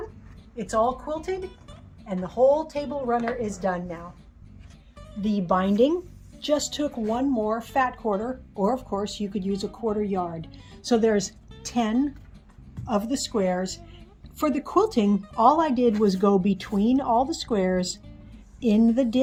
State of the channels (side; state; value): both; identical; correlation 1.00